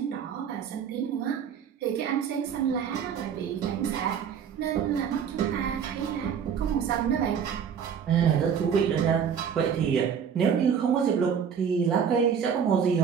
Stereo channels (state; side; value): quieter; left; 7.5 dB